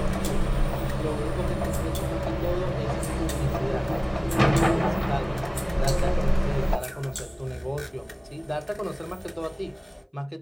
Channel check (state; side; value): identical; both; correlation 1.00